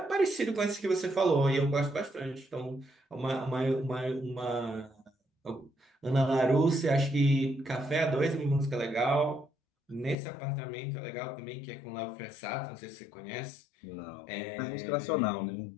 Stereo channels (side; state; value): right; drops out; at 10.2 s